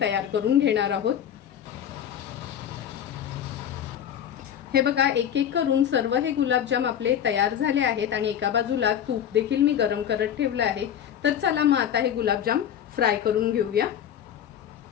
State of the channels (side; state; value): right; quieter; 9.5 dB